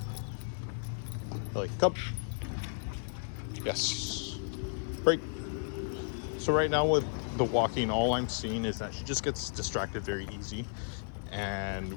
Millie, come. Yes. Break. So right now with the walking, all I'm seeing is that she just gets distracted very easy,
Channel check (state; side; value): silent; right; 55 dB below the other